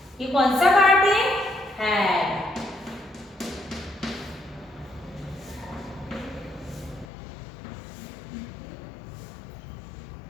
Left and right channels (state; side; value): drops out; right; at 7.1 s